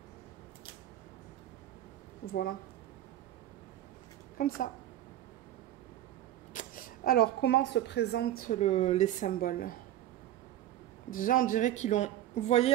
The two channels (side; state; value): left; quieter; 12.8 dB